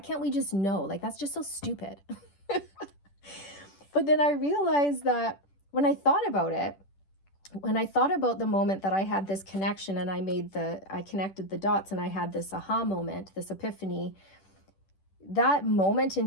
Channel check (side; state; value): right; late; 10 ms